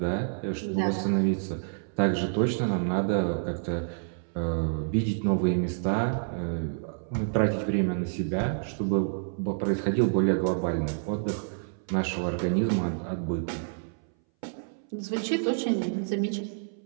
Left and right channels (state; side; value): silent; left; 59 dB below the other